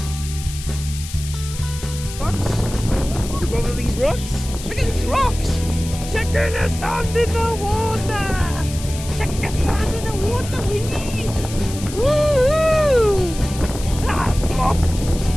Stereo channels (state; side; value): noise; left; hiss, 12 dB below the sound